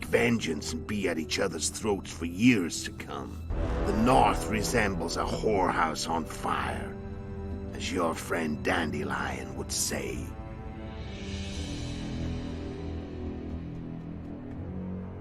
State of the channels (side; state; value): both; identical; correlation 1.00